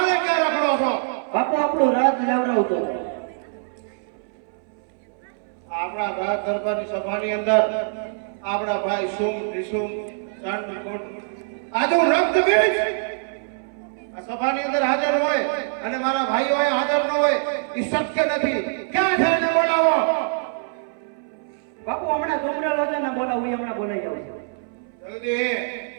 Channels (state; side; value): silent; left; 61 dB below the other